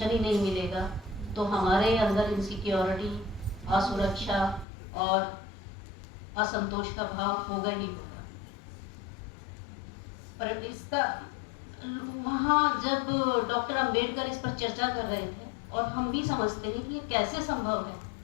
ही नहीं मिलेगा तो हमारे अंदर इनसिक्योरिटी, असुरक्षा और असंतोष का भाव होगा ही होगा। पर इसका वहाँ जब डॉक्टर अंबेडकर इस पर चर्चा कर रहे थे और हम भी समझते हैं कि ये कैसे संभव है,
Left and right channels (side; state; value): right; drops out; at 4.7 s